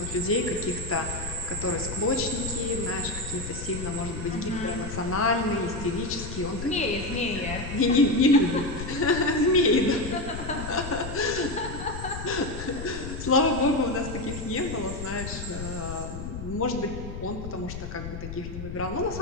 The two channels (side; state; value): left; noise; rumble, 8 dB below the sound